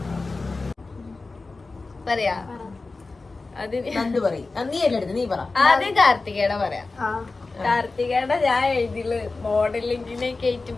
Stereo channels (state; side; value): quieter; right; 3.6 dB